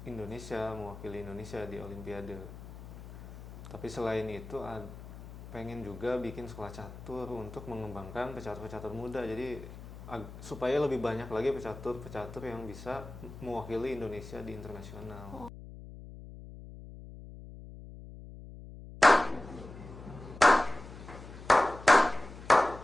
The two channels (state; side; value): noise; left; hum, 14 dB below the sound